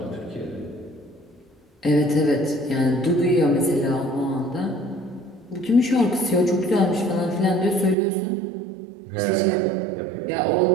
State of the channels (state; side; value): drops out; left; at 8.0 s